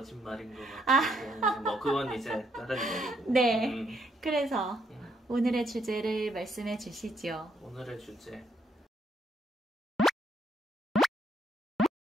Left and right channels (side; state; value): both; normal; correlation 0.73